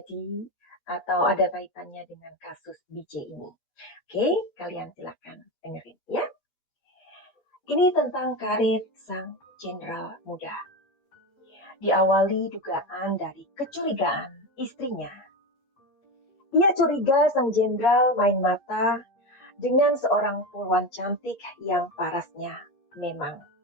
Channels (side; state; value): right; late; 8.4 ms